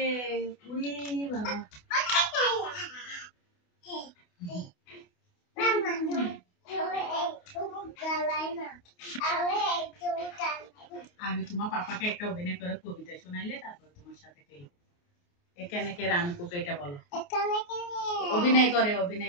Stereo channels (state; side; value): late; right; 28 ms